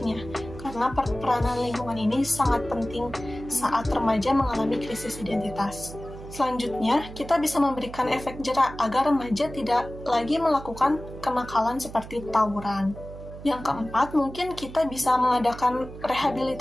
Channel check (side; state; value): right; noise; hum, 13 dB below the sound